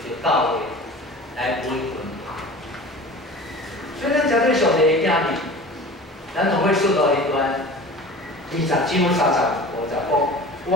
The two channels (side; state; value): both; normal; correlation 0.39